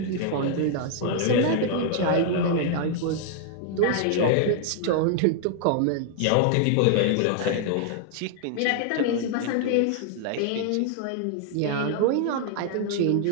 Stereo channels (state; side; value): different; both; correlation 0.00